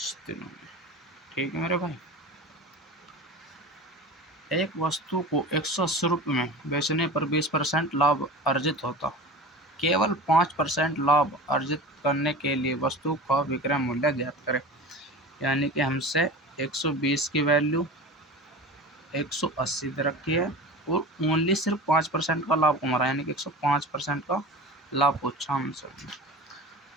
दिनों में। ठीक है मेरे भाई, एक वस्तु को 180 रुपये में बेचने पर 20% लाभ अर्जित होता। केवल 5% लाभ अर्जित करने के लिए वस्तु का विक्रय मूल्य ज्ञात करें। यानी कि हमसे 120 की वैल्यू 180 दे रखी है, और ओनली सिर्फ 5% का लाभ कमा रहा है, यानी कि 105% का लाभ पूछा हमसे।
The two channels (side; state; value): both; normal; correlation 0.33